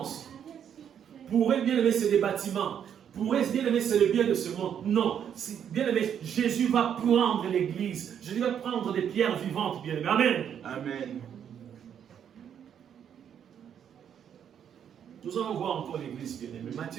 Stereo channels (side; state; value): left; quieter; 8.7 dB